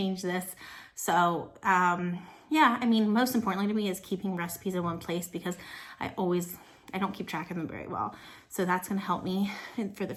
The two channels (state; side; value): identical; both; correlation 1.00